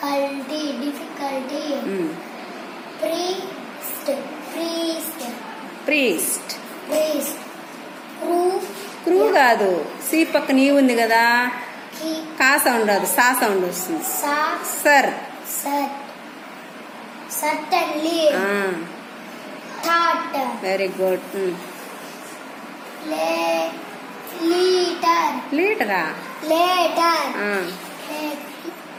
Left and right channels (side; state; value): both; identical; correlation 1.00